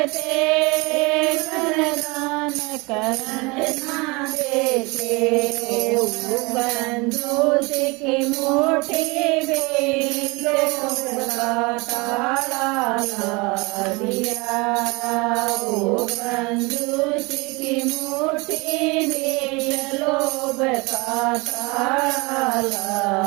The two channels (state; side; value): quieter; left; 26.3 dB